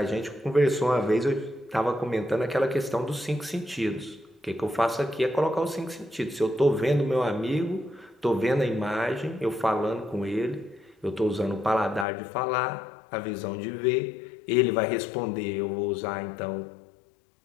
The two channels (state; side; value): drops out; right; at 12.1 s